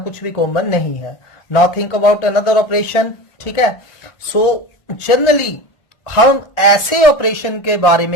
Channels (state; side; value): late; right; 1.4 ms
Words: कुछ भी कॉमन नहीं है। Now think about another operation, ठीक है। सो जनरली हम ऐसे ऑपरेशन के बारे